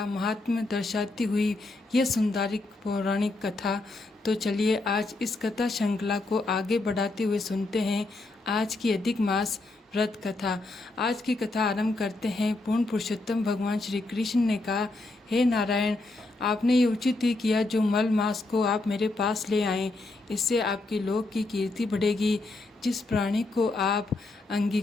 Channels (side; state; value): right; quieter; 3.1 dB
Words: महात्म्य दर्शाती हुई यह सुंदरिक पौराणिक कथा। तो चलिए आज इस कथा श्रृंखला को आगे बढ़ाते हुए सुनते हैं आज की अधिक मास व्रत कथा। आज की कथा आरंभ करते हैं। पूर्ण पुरुषोत्तम भगवान श्री कृष्ण ने कहा, हे नारायण, आपने ये उचित ही किया जो मल मास को आप मेरे पास ले आए। इससे आपकी लोक की कीर्ति बढ़ेगी। जिस प्राणी को आप